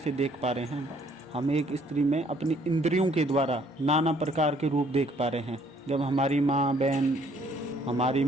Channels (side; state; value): both; normal; correlation 0.63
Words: देख पा रहे हैं? हम एक स्त्री में अपनी इंद्रियों के द्वारा नाना प्रकार के रूप देख पा रहे हैं। जब हमारी माँ, बहन, हमारी